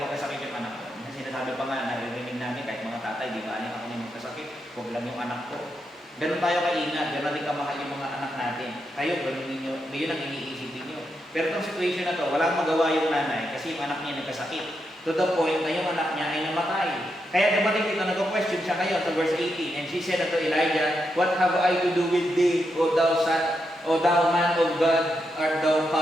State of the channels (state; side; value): normal; both; correlation 0.83